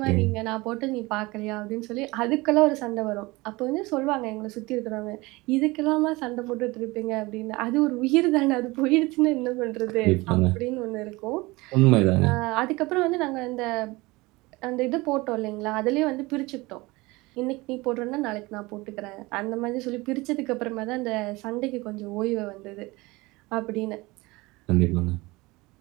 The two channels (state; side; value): quieter; left; 22.4 dB